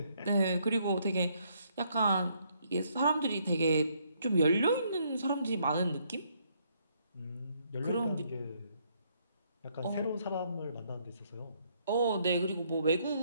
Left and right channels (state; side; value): inverted; both; correlation -0.70